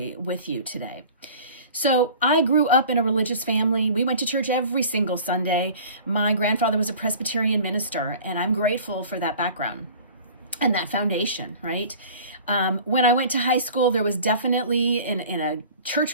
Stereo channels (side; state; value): both; inverted; correlation -0.43